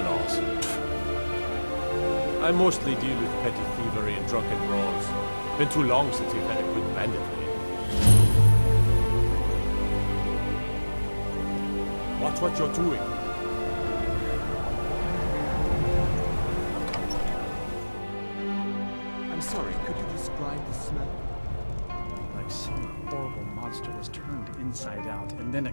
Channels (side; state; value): both; inverted; correlation -1.00